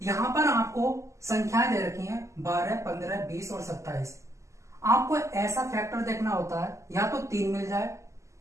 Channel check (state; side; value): late; left; 0.14 ms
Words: पर आपको संख्याएं दे रखी हैं 12, 15, 20 और 27। आपको ऐसा फैक्टर देखना होता है या तो 3 मिल जाए